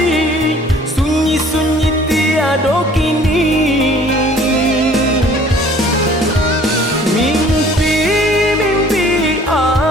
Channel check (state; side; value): normal; both; correlation 0.53